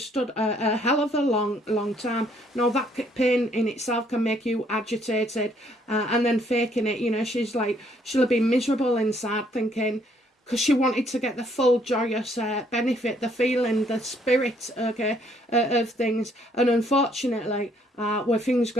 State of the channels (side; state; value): both; normal; correlation 0.66